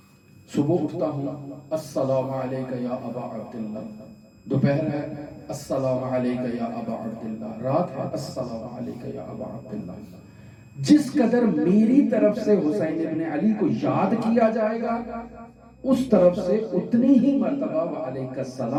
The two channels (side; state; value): both; identical; correlation 1.00